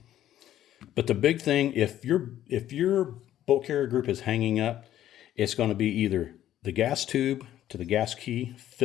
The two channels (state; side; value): quieter; right; 12.2 dB